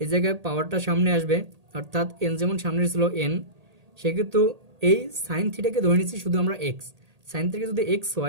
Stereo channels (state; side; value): late; left; 1.8 ms